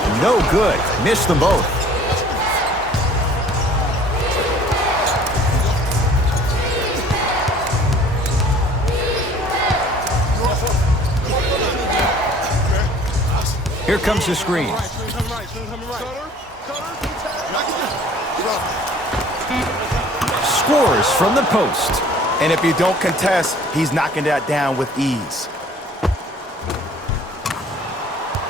No good. Missed them both. Here comes the screen. Scores from the post. And if you don't contest, he's knocking that down with ease.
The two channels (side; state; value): both; normal; correlation 0.52